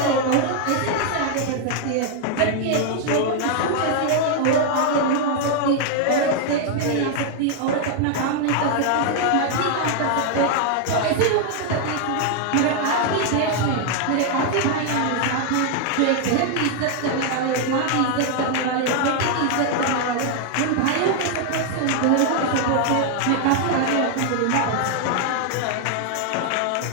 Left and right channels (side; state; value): both; different; correlation 0.00